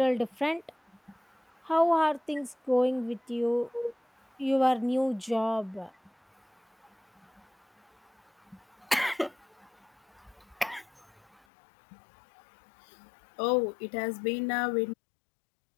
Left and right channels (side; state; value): right; drops out; at 11.4 s